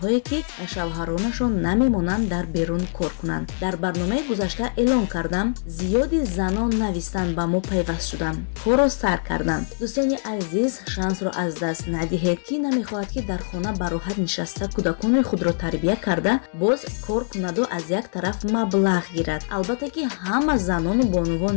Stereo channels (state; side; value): silent; right; digital silence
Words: ки шавҳаронашон намемонанд дар берун кор кунанд. Дар барномаи гузашта эълон кардам, зиёди занон навистан ба мо пайваст шуданд, корро сар карданд. дӯстони азиз, шансро аз даст надиҳед. Ки намехоҳад ки дар хона ба роҳат нишаста кӯдакони худро тарбия карда, боз кор кунаду аз як тараф маблағ гирад. Албатта ки ҳама занону бонувон